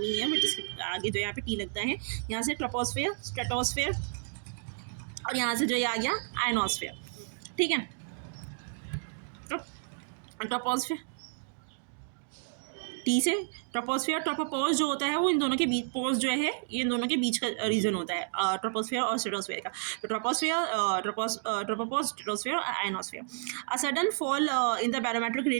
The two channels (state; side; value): silent; left; digital silence